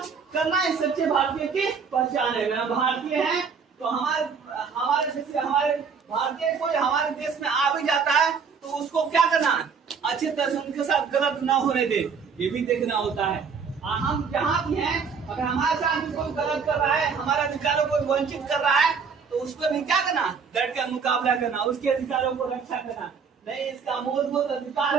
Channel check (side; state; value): left; quieter; 5.9 dB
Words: करना इस सच्चे भारतीय की पहचान है। हम भारतीय हैं तो हमारे जैसे हमारे भारतीय कोई हमारे देश में आ भी जाता है तो उसको क्या करना है, अच्छी तरह से उनके साथ गलत ना होने दे, ये भी देखना होता है। हम जहाँ भी हैं, अगर हमारे साथ भी कोई गलत कर रहा है, हमारे अधिकारों को वंचित कर रहा है, तो उसको भी क्या करना, डट कर मुकाबला करना, उसके अधिकारों को रक्षा करना। नहीं, इसका मूलभूत अधिकार